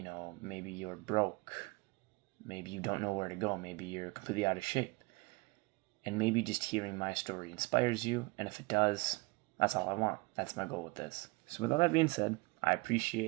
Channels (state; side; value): quieter; left; 26.0 dB